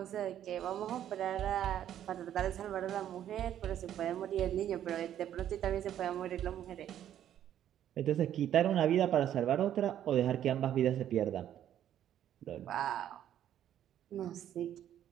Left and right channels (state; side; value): quieter; left; 10.9 dB